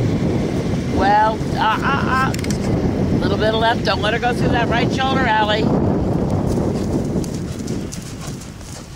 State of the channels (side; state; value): both; identical; correlation 1.00